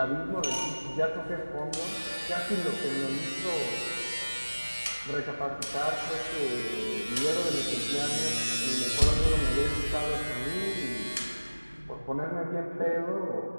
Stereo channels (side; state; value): both; inverted; correlation -1.00